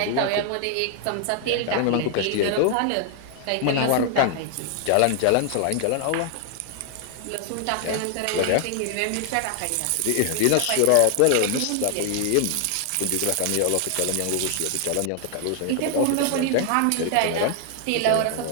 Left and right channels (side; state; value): both; different; correlation 0.00